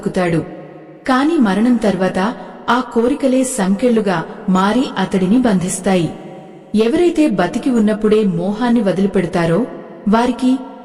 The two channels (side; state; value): both; identical; correlation 1.00